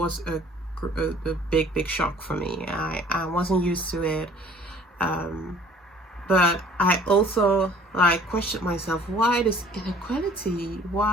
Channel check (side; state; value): both; normal; correlation 0.53